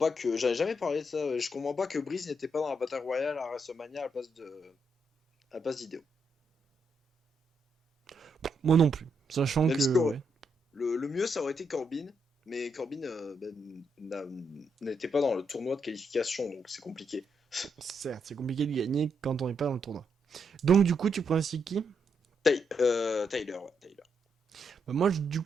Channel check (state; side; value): normal; both; correlation 0.79